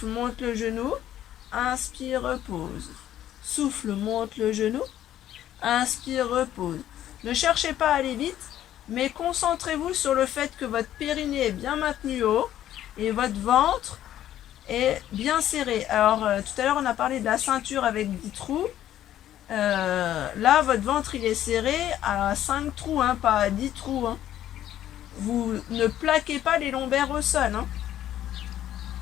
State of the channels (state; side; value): quieter; right; 12.0 dB